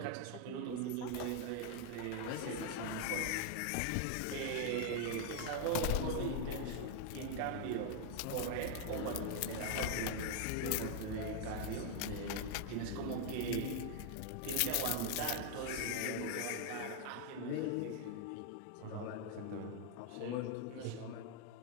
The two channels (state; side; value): different; both; correlation 0.00